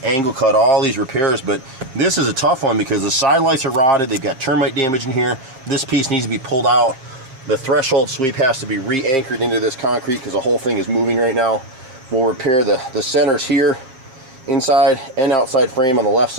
angle cut all these repairs. But this is a tough one because the side lights are rotted, they've got termite damage in here, this piece needs to be pulled out, the threshold sweep has to be re-anchored into this concrete because the whole thing is moving right now. We'll repair the centers here, inside and outside frame on the left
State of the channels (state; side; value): late; left; 7.5 ms